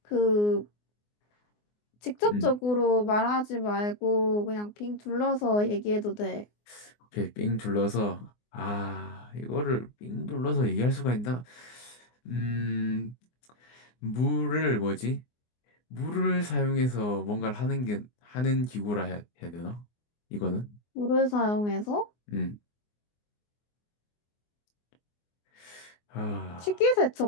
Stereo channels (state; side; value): late; right; 24 ms